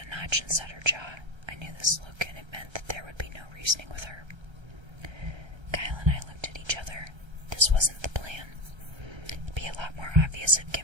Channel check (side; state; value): left; late; 1.3 ms